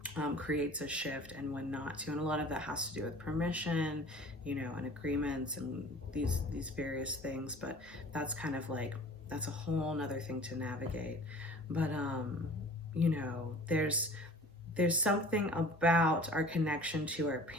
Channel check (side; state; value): both; normal; correlation 0.45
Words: creates a shift, and when not to. And a lot of that has to do with permission, you know, and agreements and these various things. But that's kind of like, that's a whole nother thing to navigate. But you know, there's something about our connection to our